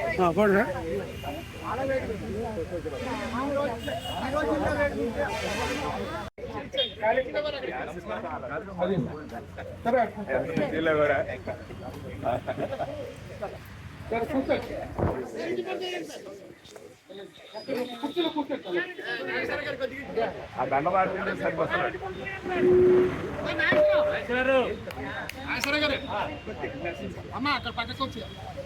ఆ దండ మాట్లాడితే సరిపోతుంది. అమ్మ అక్కడ పక్కకు వచ్చి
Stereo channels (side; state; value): both; identical; correlation 1.00